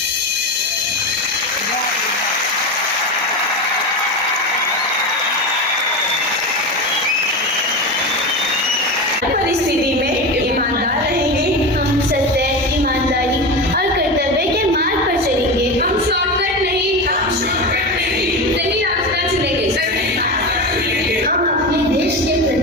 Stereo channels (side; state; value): both; normal; correlation 0.22